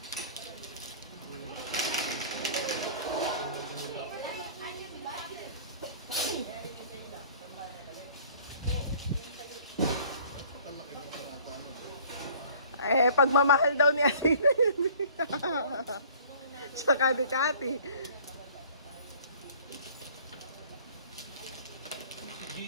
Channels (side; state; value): both; inverted; correlation -0.50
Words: Eh, pagmamahal daw ni Athena yun. Tsaka ni Cathy.